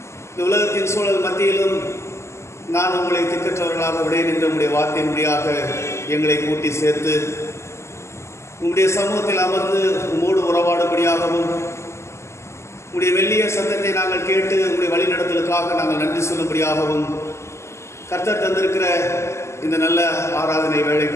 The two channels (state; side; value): late; right; 0.13 ms